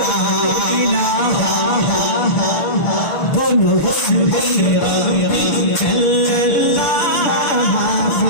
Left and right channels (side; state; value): right; late; 6.6 ms